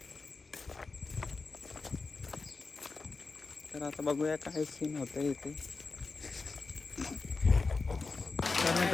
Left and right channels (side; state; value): right; quieter; 4.1 dB